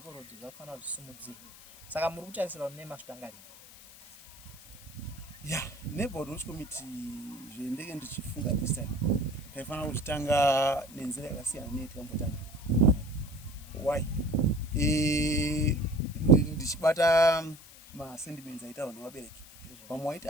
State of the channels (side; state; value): left; noise; hiss, 20 dB below the sound